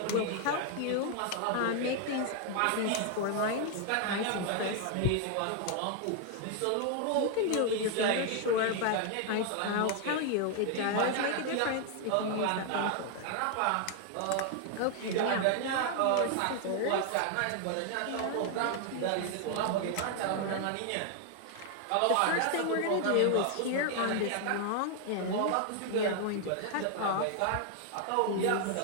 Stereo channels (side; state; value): both; different; correlation 0.00